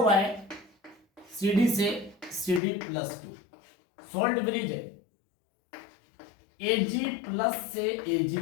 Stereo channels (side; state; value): right; drops out; at 2.6 s